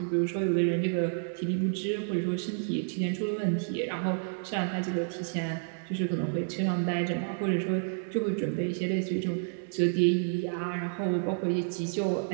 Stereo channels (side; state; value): left; silent; 58 dB below the other